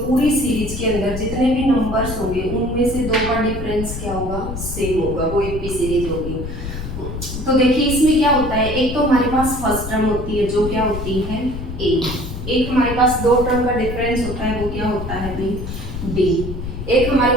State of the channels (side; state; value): left; noise; rumble, 7 dB below the sound